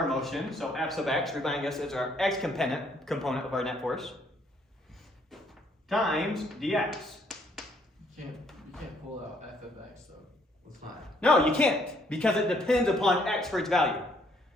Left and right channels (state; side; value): normal; both; correlation 0.67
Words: motion, so F sub x, reminding us it's our x component of our net force, times dx. You can't pull out f of x though. It's not. No, you can't, because it depends upon x for its value.